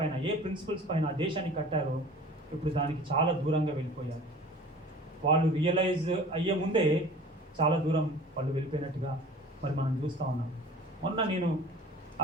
ఏ ప్రిన్సిపల్స్ పైన ఆ దేశాన్ని కట్టారో ఇప్పుడు దానికి చాలా దూరంగా వెళ్ళిపోయారు. వాళ్ళు రియలైజ్ అయ్యే ముందే చాలా దూరం వాళ్ళు వెళ్ళిపోయినట్టుగా మరి మనం చూస్తూ ఉన్నాం. మొన్న నేను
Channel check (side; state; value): both; normal; correlation 0.44